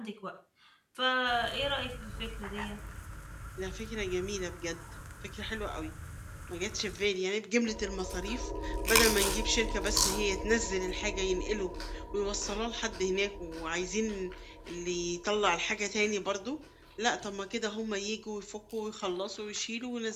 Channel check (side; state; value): both; identical; correlation 1.00